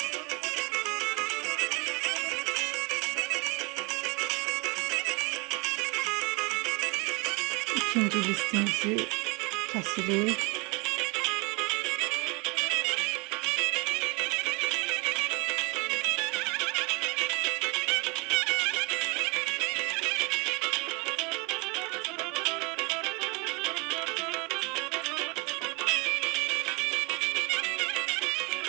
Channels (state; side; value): quieter; left; 29.1 dB